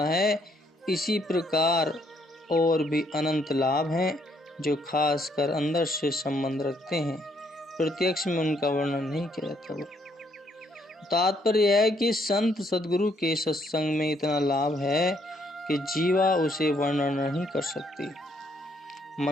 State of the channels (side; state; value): both; normal; correlation 0.70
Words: है। इसी प्रकार और भी अनंत लाभ हैं जो खासकर अंदर से संबंध रखते हैं, प्रत्यक्ष में उनका वर्णन नहीं किया जाता। तात्पर्य है कि संत सद्गुरु के सत्संग में इतना लाभ है कि जीवा उसे वर्णन नहीं कर सकती।